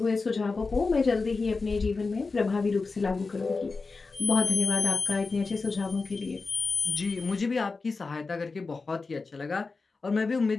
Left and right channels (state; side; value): quieter; right; 4.1 dB